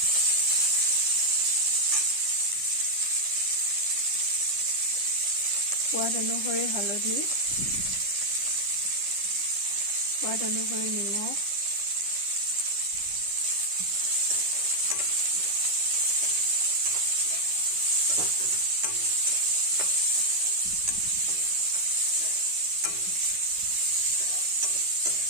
সোৱাদ অনুসৰি হালধি সোৱাদ অনুসৰি নিমখ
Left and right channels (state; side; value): late; left; 10 ms